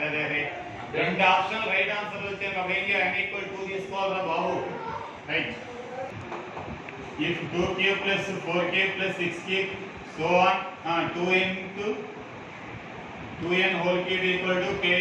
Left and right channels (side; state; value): both; identical; correlation 1.00